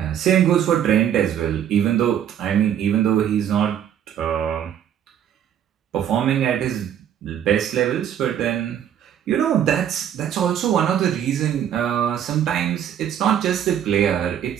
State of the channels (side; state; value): left; quieter; 9.7 dB